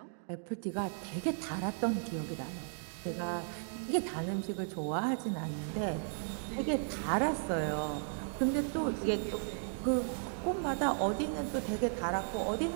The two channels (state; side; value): silent; left; digital silence